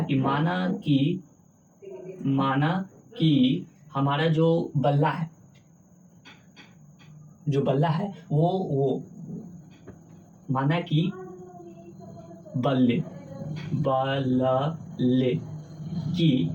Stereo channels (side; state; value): both; identical; correlation 1.00